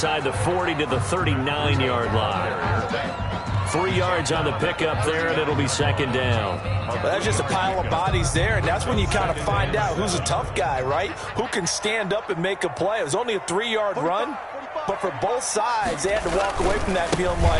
the 40 to the 39-yard line. 3 yards on the pickup there, and it'll be 2nd down. Well, that's just a pile of bodies there, and that's when you kind of find out who's a tough guy, right? Who can stand up and make a play. It was only a 3-yard run, but for both sides, they had to walk away from that feeling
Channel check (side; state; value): both; identical; correlation 1.00